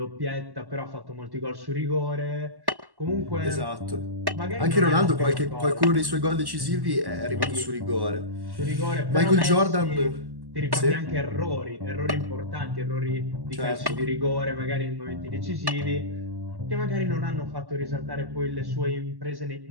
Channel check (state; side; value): late; left; 1.1 ms